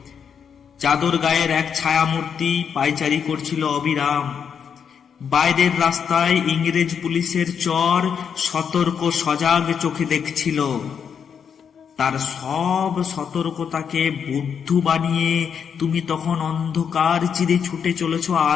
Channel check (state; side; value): quieter; right; 7.2 dB